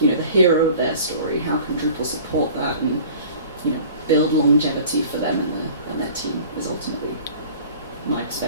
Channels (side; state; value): both; inverted; correlation -0.45